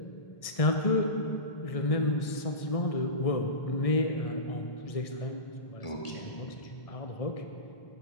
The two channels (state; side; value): late; right; 1.6 ms